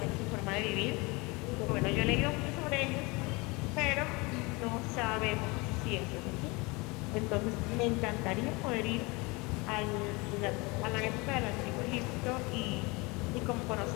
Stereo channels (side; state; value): right; quieter; 25.8 dB